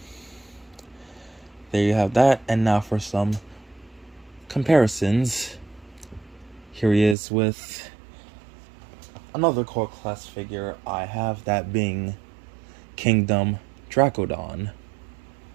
there you have that, and now for some comparisons. Here he is with another core class figure I have, that being Kingdom Dracodon.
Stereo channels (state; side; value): drops out; left; at 7.2 s